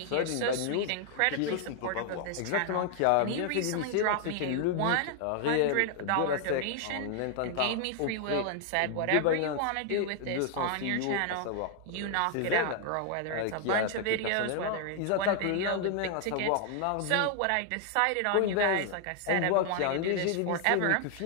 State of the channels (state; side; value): different; both; correlation 0.00